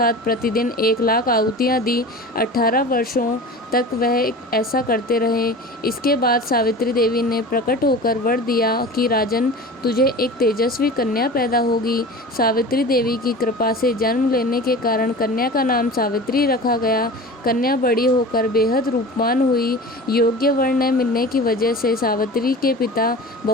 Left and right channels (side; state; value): both; normal; correlation 0.35